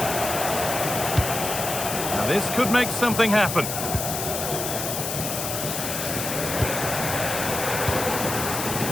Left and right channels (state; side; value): noise; left; hiss, 4 dB below the sound